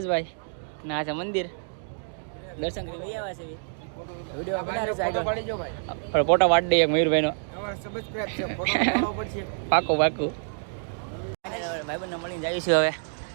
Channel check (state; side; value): silent; left; digital silence